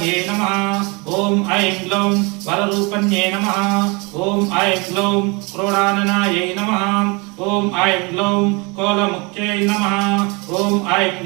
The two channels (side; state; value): left; quieter; 28.8 dB